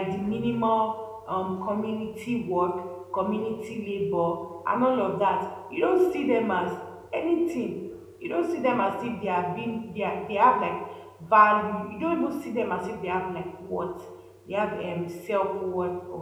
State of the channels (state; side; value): identical; both; correlation 1.00